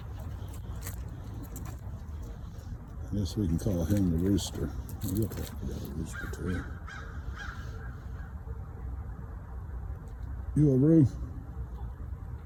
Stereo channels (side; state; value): both; identical; correlation 1.00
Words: I guess we can call him the Rooster. He looks like we got a rooster too. You a Roo?